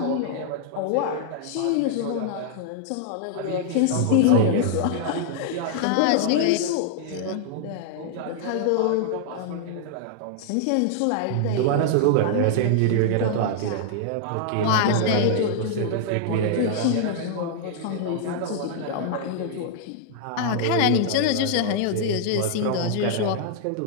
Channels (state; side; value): different; both; correlation -0.01